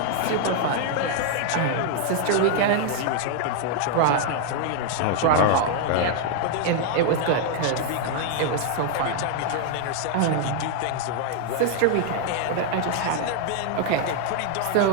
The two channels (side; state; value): both; different; correlation 0.00